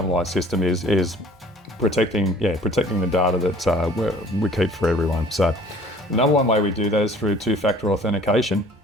system is protecting the data that we keep for everyone. So the number one way we do that is through two-factor authentication,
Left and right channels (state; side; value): normal; both; correlation 0.51